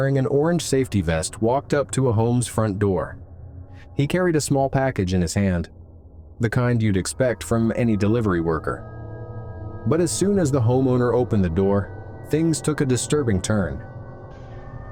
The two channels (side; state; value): both; identical; correlation 1.00